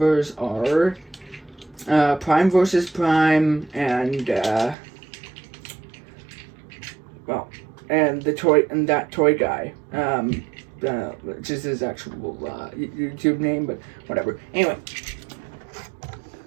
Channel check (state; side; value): drops out; left; at 4.8 s